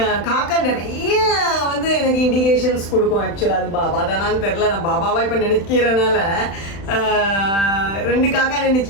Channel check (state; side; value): late; right; 35 ms